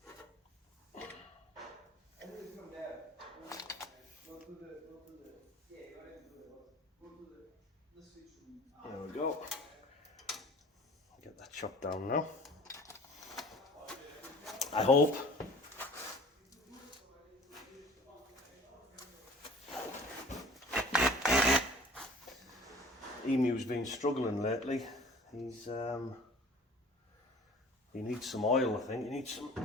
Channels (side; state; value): both; normal; correlation 0.46